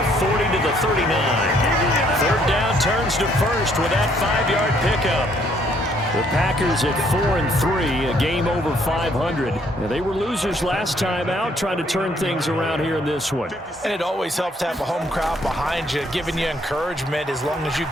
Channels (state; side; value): normal; both; correlation 0.66